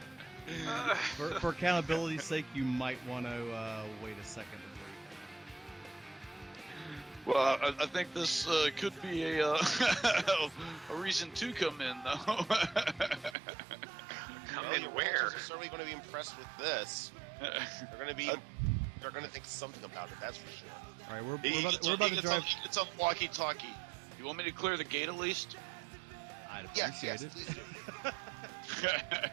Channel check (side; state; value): left; drops out; at 13.4 s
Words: For accountability's sake, you might want to wait a second. Well, I think this could be a reason to come in, though. Come Yeah, in the where? Rangers are certainly going to be impressed with this. They're going to think something about it. That's for sure. All right, we're He about gets to on the walkie-talkie. You want me to clear the gate at least? Yes, please do.